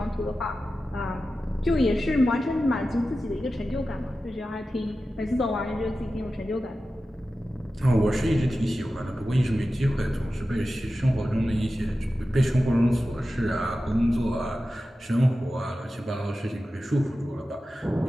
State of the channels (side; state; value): both; normal; correlation 0.93